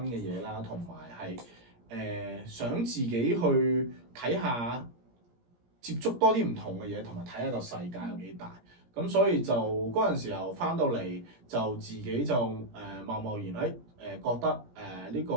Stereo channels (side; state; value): left; late; 17 ms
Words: 嘅嘢啦，同埋係想自己去睇下，接觸多啲唔同嘅嘢，同埋睇下個世界有幾大。咁所以就嗰陣時候翻到嚟，就自己就貿貿然覺得呢個